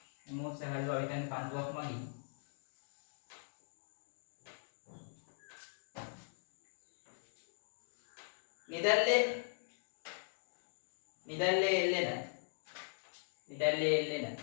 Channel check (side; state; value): right; silent; digital silence